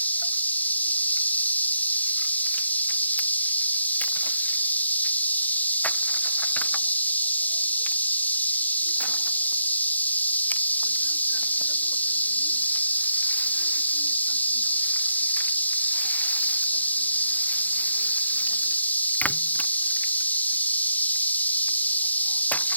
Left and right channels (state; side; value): late; right; 0.081 ms